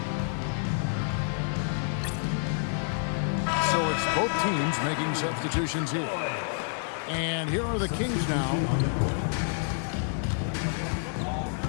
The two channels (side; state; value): right; silent; digital silence